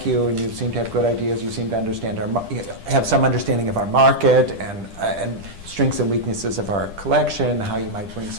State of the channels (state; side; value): late; left; 10 ms